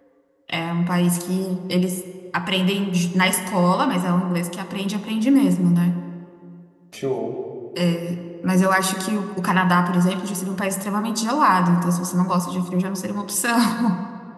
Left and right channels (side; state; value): both; identical; correlation 1.00